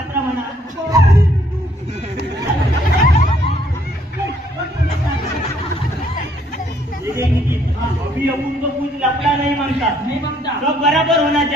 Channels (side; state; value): both; normal; correlation 0.66